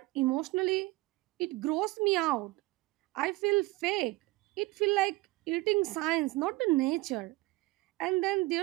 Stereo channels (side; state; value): left; quieter; 21.1 dB